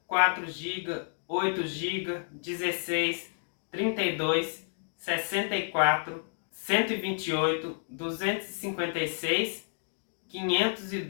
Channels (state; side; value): silent; right; digital silence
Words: 4 GB, 8 GB, 16, 32, 64, 128, 256,